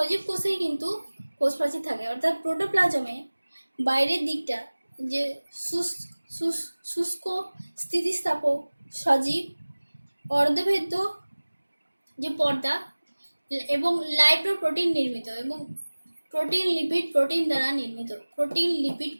কোষেই কিন্তু কোষ প্রাচীর থাকে, অর্থাৎ প্রোটোপ্লাজমে বাইরের দিকটা যে শুষ্ক, স্থিতিস্থাপক, সজীব, অর্ধভেদ্য যে পর্দা এবং লাইপোপ্রোটিন নির্মিত এবং প্রোটিন লিপিড প্রোটিন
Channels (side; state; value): both; inverted; correlation -1.00